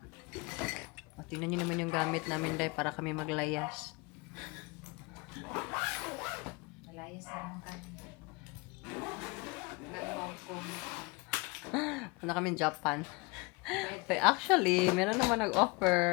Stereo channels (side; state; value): right; quieter; 27.0 dB